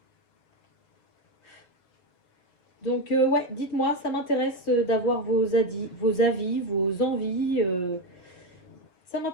Donc, ouais, dites-moi, ça m'intéresse d'avoir vos avis, vos envies. Ça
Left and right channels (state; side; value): late; right; 5.7 ms